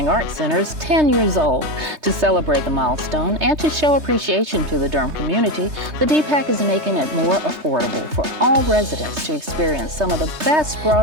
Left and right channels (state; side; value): late; left; 3.3 ms